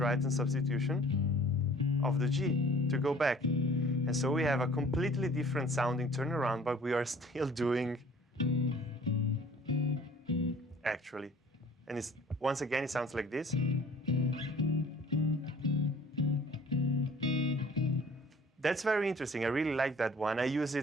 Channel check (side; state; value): both; normal; correlation 0.51